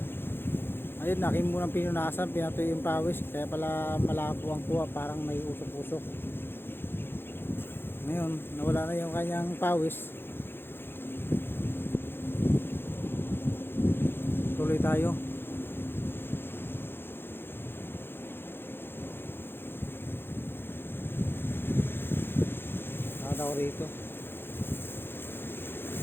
Ayun, akin munang pinunasan, pinatuyo yung pawis, kaya pala malabo ang kuha, parang may usok-usok. Ngayon nawala na yung kanyang pawis. Tuloy tayo. Nakataw rito.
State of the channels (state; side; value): late; right; 0.10 ms